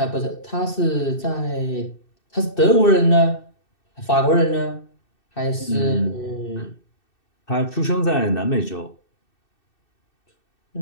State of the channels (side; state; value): right; late; 2.6 ms